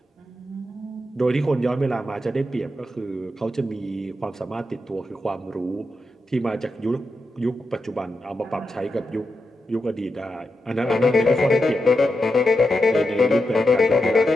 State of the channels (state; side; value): normal; both; correlation 0.87